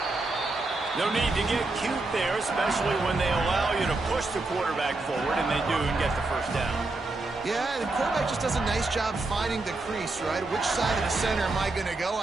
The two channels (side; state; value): left; quieter; 3.2 dB